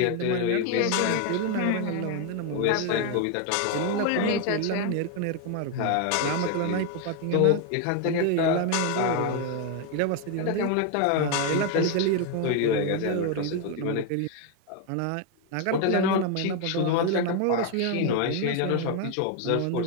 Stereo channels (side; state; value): both; different; correlation 0.01